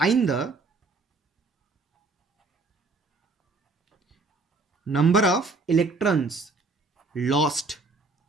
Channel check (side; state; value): left; quieter; 3.7 dB